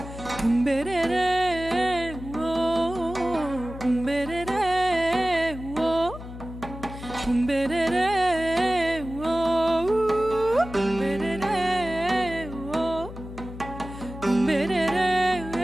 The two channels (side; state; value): left; noise; hum, 12 dB below the sound